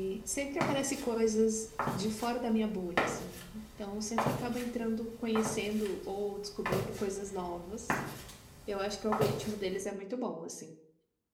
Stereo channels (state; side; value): identical; both; correlation 1.00